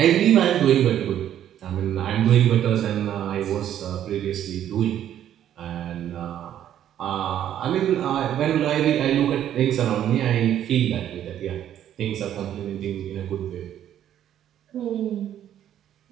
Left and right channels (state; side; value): quieter; left; 10.8 dB